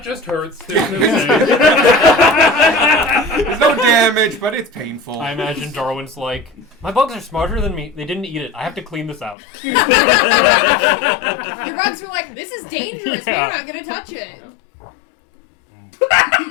just hurts. There's no damage, but it's painful. I imagine Darwin's like, my bugs are smarter than me. They didn't eat it. I have to clean this out. Your bugs were like, this is dangerous. Yeah. We're not gonna touch it. Yep.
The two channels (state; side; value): drops out; right; at 9.3 s